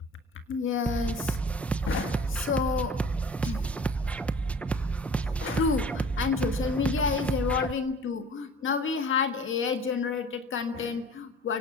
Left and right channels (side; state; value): both; normal; correlation 0.45